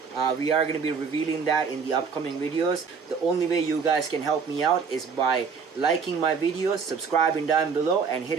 We are going to be revealing that in the upcoming videos. The only way you guys can help me out is by liking my videos, subscribing down below, and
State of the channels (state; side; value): quieter; left; 5.7 dB